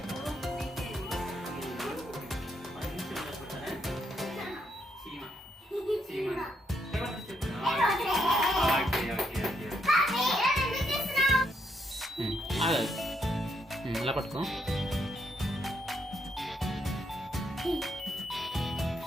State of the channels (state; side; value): normal; both; correlation 0.77